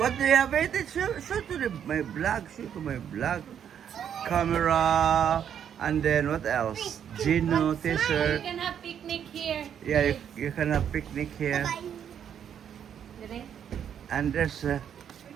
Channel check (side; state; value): left; quieter; 8.8 dB